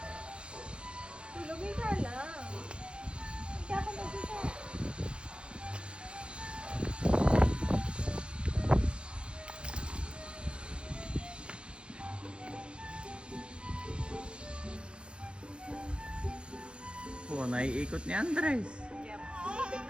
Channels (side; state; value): left; late; 0.056 ms